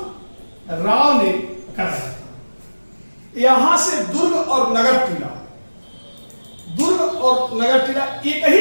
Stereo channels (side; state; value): both; inverted; correlation -1.00